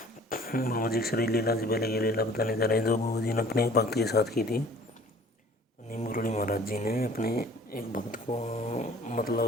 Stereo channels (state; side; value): normal; both; correlation 0.50